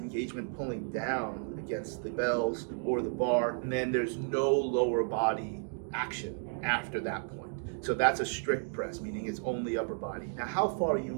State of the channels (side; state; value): left; silent; 56 dB below the other